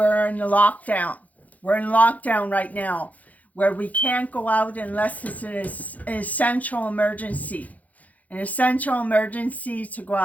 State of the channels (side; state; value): right; late; 0.076 ms